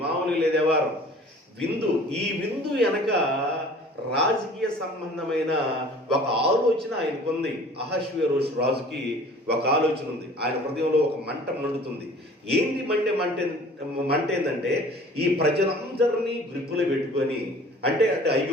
మామూలుగా లేదే వారం విందు. ఈ విందు వెనక రాజకీయ సంబంధమైన ఒక ఆలోచన ఆయనకుంది. అహష్వేరోషు రాజుకి ఒక ఆలోచన ఉంది. ఆయన హృదయంలో ఒక మంట మండుతుంది. ఏంటి మంట ఏంటంటే, ఈ ప్రజలందరినీ గ్రిప్పులో పెట్టుకొని, అంటే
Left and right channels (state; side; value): normal; both; correlation 0.48